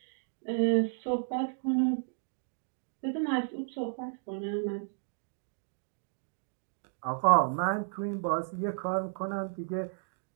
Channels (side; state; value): left; silent; digital silence